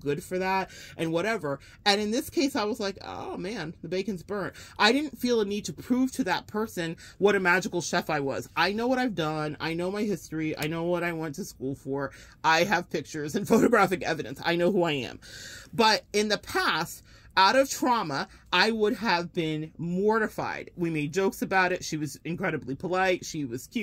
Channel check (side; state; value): both; identical; correlation 1.00